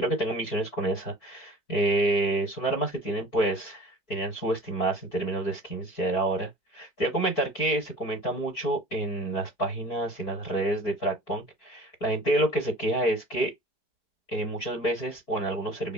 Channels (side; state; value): right; late; 4.4 ms